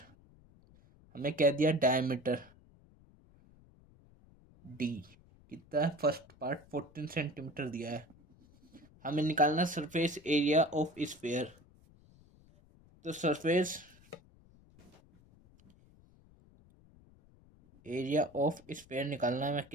हमें क्या दिया, डायमीटर डी कितना है, फर्स्ट पार्ट 14 सेंटीमीटर दिया है। हमें निकालना सरफेस एरिया ऑफ स्फीयर। तो सरफेस एरिया ऑफ स्फीयर निकालना है,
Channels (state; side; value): noise; left; rumble, 27 dB below the sound